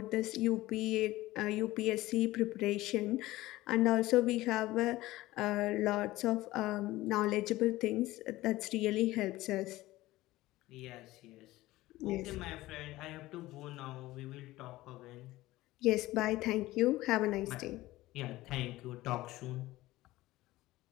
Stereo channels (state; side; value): quieter; right; 17.6 dB